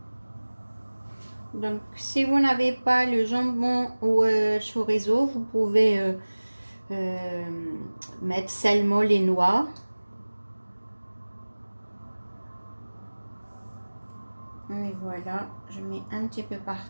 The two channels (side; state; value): both; inverted; correlation -1.00